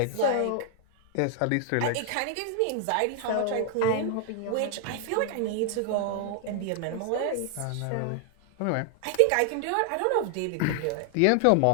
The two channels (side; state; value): both; different; correlation 0.00